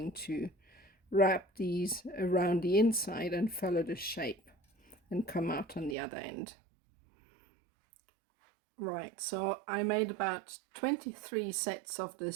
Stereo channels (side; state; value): left; drops out; at 6.0 s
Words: to wrap these around the inside and follow the shape and come out on the other end. Right, so I made about 23 sets of